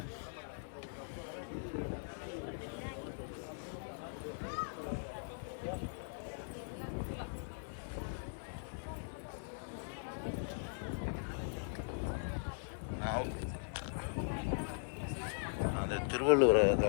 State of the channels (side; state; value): right; silent; 51 dB below the other